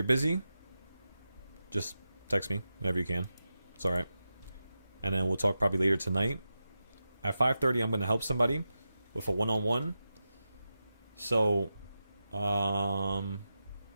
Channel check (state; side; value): inverted; both; correlation -0.91